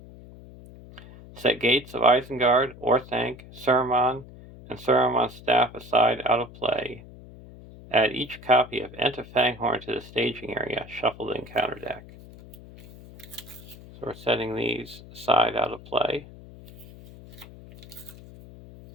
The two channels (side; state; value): left; noise; hum, 18 dB below the sound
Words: Set gates of Isengard, Orthanc, Saruman, and Saruman's staff aside out of play. Add each copy of Ent of Fanghorn to the staging area. Shuffle the encounter deck." So we're setting these aside out of play.